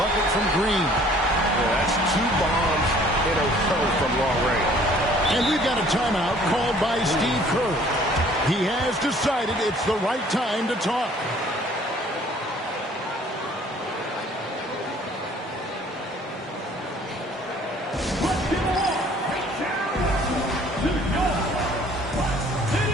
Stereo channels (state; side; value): normal; both; correlation 0.55